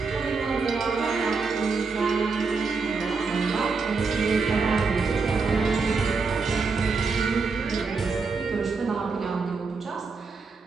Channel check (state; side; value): quieter; left; 4.6 dB